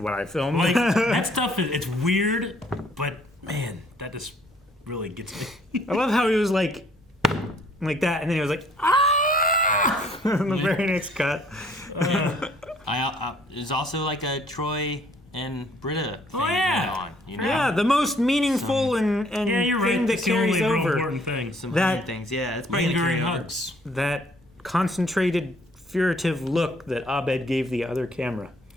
what I filmed. Like, that stuff, it's weird, but man, that just really gets me. I love how he was like that, and then he was like, ah! In the very next cut. There's also like a Troy and Britta thing yeah. going on. You know? Yeah, the most meaningful and Yeah, you're thing right. that It's the only carries real over. important thing. Some That- other things. Yeah, it's probably gonna Lingering carry over. hugs. That concentrated, furtive look that Abed gave the other camera.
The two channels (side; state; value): both; normal; correlation 0.61